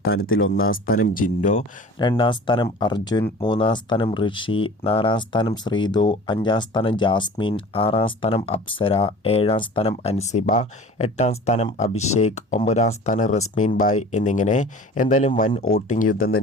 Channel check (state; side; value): normal; both; correlation 0.42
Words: 1-ാം സ്ഥാനം ജിൻഡോ, 2-ാം സ്ഥാനം അർജുൻ, 3-ാം സ്ഥാനം ഋഷി, 4-ാം സ്ഥാനം ശ്രീതു, 5-ാം സ്ഥാനം ജാസ്മിൻ, 6-ാം സ്ഥാനം അപ്സര, 7-ാം സ്ഥാനം അൻസിബ, 8-ാം സ്ഥാനം അഭിഷേക്, 9-ാം സ്ഥാനം റസ്മീൻ ബായ് എന്നിങ്ങനെ എന്തായാലും വൻ വോട്ടിംഗ് യുദ്ധം